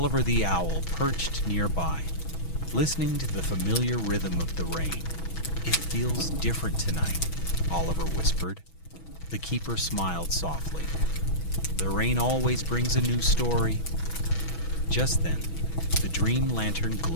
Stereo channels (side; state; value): right; late; 6.1 ms